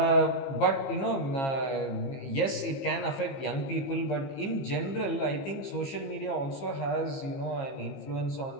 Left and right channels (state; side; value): late; right; 15 ms